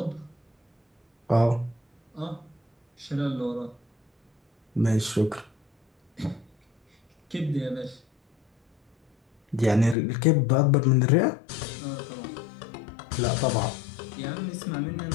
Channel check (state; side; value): drops out; right; at 10.0 s